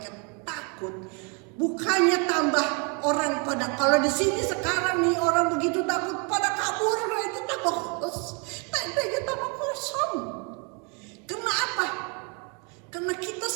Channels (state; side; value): quieter; left; 34.6 dB